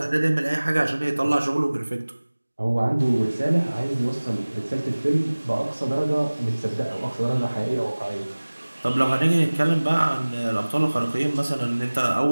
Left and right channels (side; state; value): both; inverted; correlation -1.00